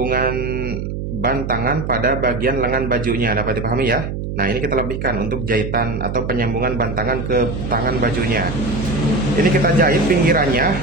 bantangan pada bagian lengan bajunya. Dapat dipahami ya? Nah, ini kita lebihkan untuk jahitan atau penyambungan bantangan ke tangan bajunya. Ini kita jahit pinggirannya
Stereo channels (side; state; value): right; noise; hum, 5 dB below the sound